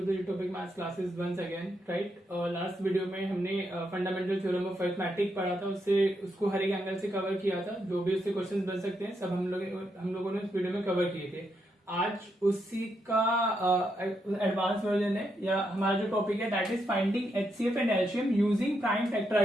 the Utopic maths classes once again. Right, last video में हमने fundamental theorem of arithmetic पढ़ा था। उसको हर एक एंगल से कवर किया था। जो भी उससे क्वेश्चंस बन सकते हैं सब हम लोगों ने उस वीडियो में कवर किए थे। आज उसी का एडवांस वर्जन है, या हमारा जो टॉपिक है that is finding HCF and LCM using prime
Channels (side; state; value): both; normal; correlation 0.80